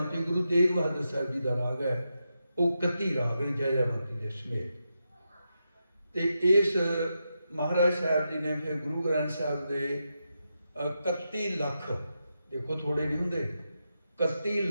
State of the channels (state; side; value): inverted; both; correlation -0.86